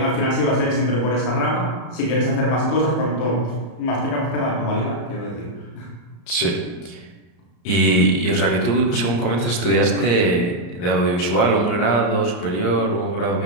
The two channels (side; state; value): right; late; 34 ms